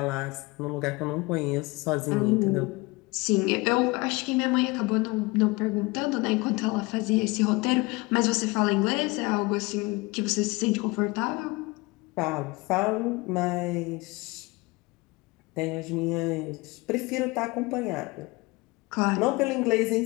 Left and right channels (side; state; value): right; quieter; 23.9 dB